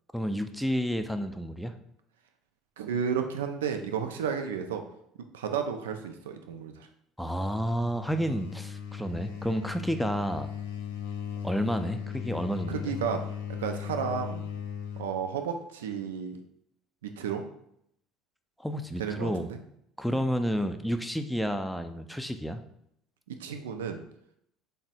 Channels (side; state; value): both; normal; correlation 0.58